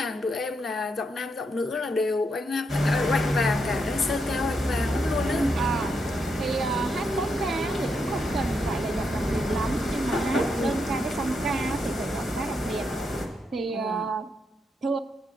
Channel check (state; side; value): normal; both; correlation 0.80